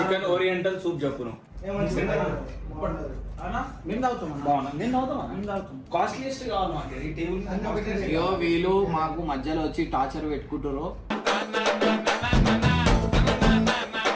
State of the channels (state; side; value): identical; both; correlation 1.00